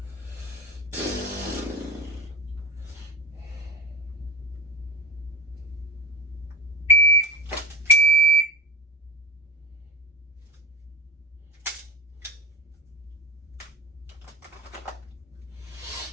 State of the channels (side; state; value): both; normal; correlation 0.25